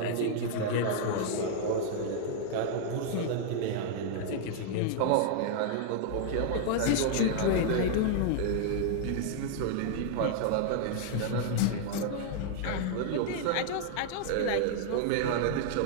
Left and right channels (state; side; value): different; both; correlation -0.01